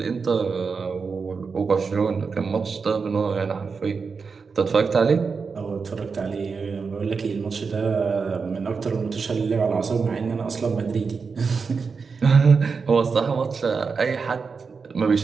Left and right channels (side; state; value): left; quieter; 5.1 dB